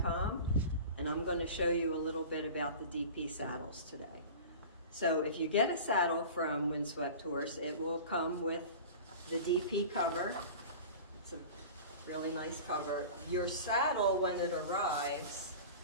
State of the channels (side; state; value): both; inverted; correlation -0.36